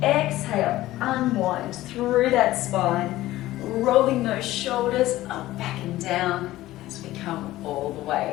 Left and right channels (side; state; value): right; quieter; 16.1 dB